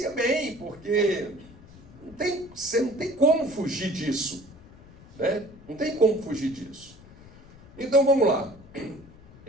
bem, porque você não tem como fugir disso. Né? Não tem como fugir disso. Então vamos lá.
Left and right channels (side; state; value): left; noise; rumble, 21 dB below the sound